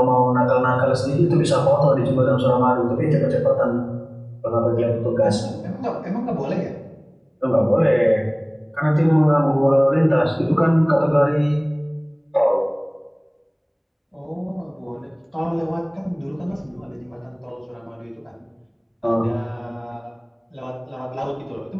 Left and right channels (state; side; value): identical; both; correlation 1.00